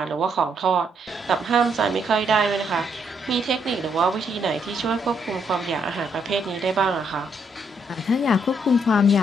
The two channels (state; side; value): normal; both; correlation 0.73